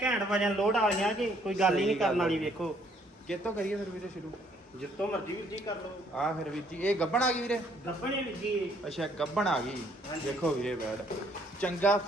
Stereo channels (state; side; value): normal; both; correlation 0.65